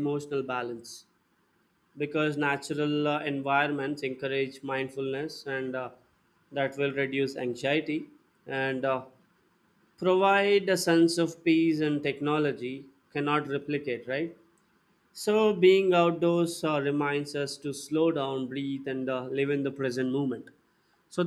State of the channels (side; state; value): both; identical; correlation 1.00